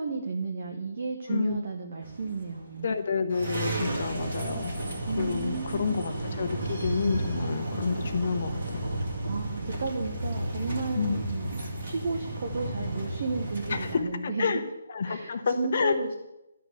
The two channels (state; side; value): inverted; both; correlation -0.80